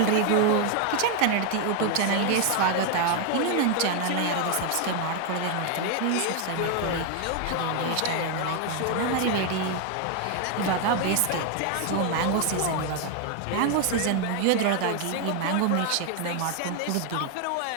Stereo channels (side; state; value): both; different; correlation 0.01